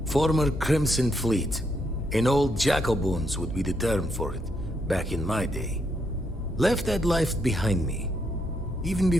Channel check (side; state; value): both; normal; correlation 0.77